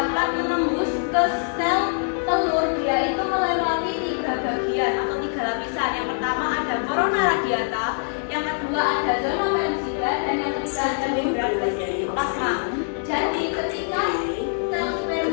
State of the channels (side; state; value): right; silent; digital silence